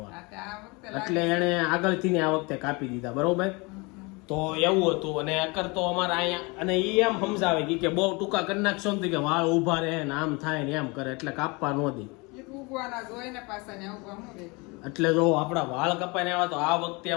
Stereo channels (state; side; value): quieter; right; 27.5 dB